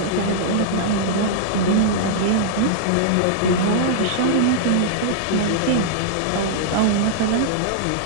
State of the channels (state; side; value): different; both; correlation -0.02